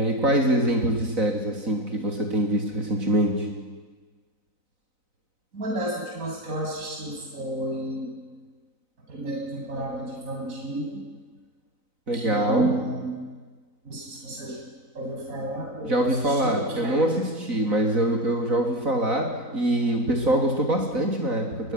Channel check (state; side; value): late; left; 3.9 ms